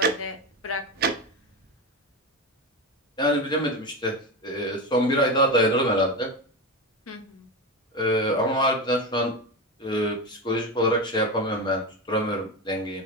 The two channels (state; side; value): normal; both; correlation 0.19